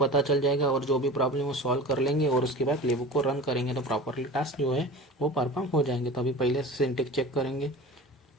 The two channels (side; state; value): both; normal; correlation 0.35